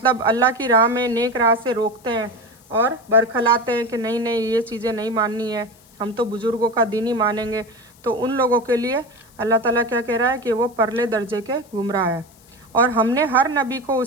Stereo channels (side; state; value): left; noise; hiss, 28 dB below the sound